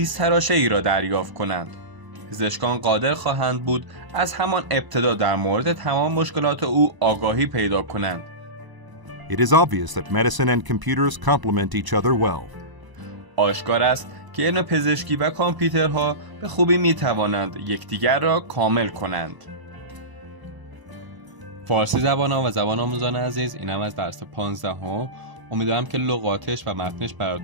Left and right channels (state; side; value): late; left; 1.0 ms